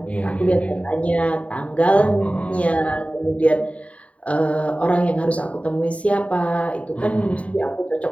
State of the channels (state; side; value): late; right; 0.066 ms